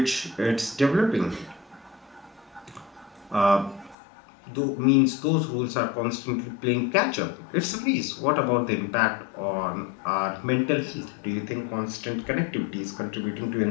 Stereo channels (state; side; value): drops out; right; at 4.0 s